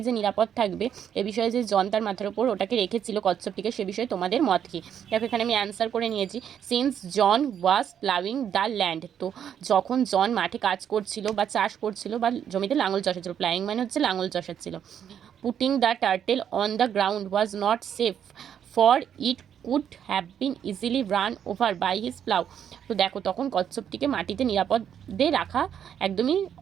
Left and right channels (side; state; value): left; quieter; 8.9 dB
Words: যে নিরাপদ থাকবে এ বিষয়ে যে জন তার মাথার উপর ওটাকে রেখেছিল কচ্ছপটিকে, সে বিষয়ে তোমাদের মত কি। দেখো এখানে আমি অ্যান্সার করে নিয়েছি, since John was ploughing the land. তো যখন জন মাঠে কাজ করছিল বা চাষ করছিল বা জমিতে লাঙল চষাচ্ছিল, প্লাউইং মানে হচ্ছে লাঙল চষাচ্ছিল। Putting the turtle on the ground was not safe for it could have been easily run over by his plough. তো দেখো তখন কচ্ছপটিকে মাটিতে নিরাপদে রাখা একদমই